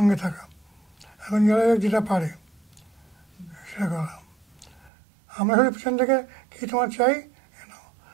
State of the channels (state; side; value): drops out; left; at 4.9 s